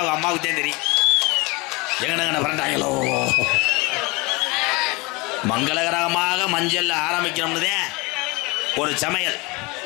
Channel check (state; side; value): quieter; right; 25.9 dB